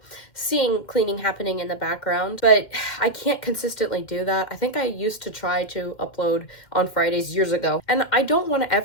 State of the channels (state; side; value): late; right; 2.1 ms